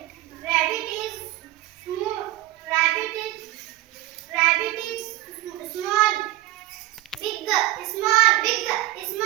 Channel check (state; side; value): quieter; left; 16.3 dB